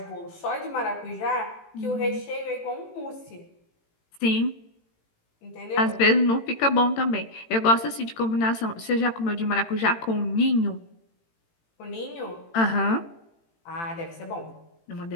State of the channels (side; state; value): right; late; 18 ms